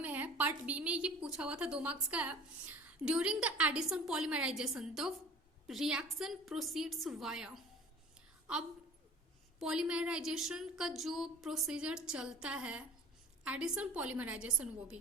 है, पार्ट बी में ये पूछा हुआ था, 2 मार्क्स का है। During the addition polymerisation the reaction proceeds via. अब पॉलीमराइजेशन का जो प्रोसीजर चलता है, एडिशन पॉलीमराइजेशन वो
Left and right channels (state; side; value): normal; both; correlation 0.43